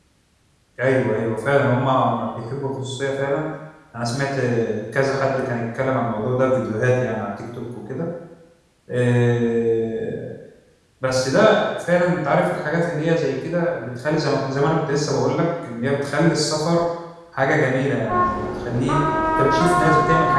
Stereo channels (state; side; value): identical; both; correlation 1.00